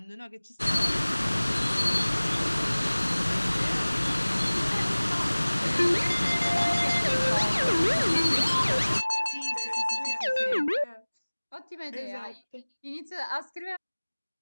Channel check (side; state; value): both; inverted; correlation -1.00